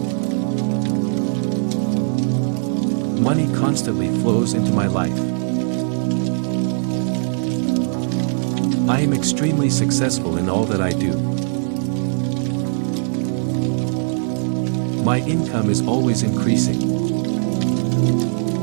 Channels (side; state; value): left; silent; 66 dB below the other